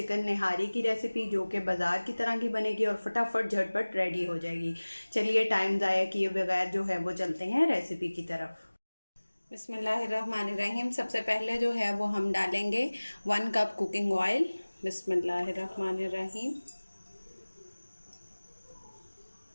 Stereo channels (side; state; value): both; inverted; correlation -1.00